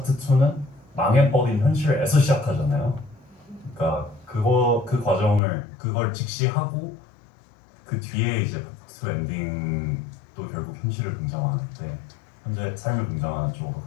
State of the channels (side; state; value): right; drops out; at 5.4 s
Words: 2는 망해버린 현실에서 시작하잖아요. 그러니까 그 과정을 그걸 직시하고 그 뒤에 이제 파트 2 엔딩도 결국 현실을 긍정하는데 현재 삶을 긍정하는 쪽으로